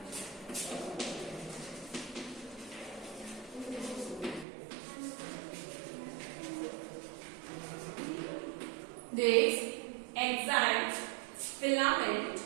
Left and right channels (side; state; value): left; drops out; at 4.5 s